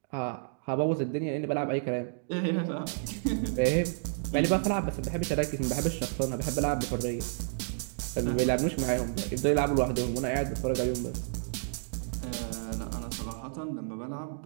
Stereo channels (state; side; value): silent; left; digital silence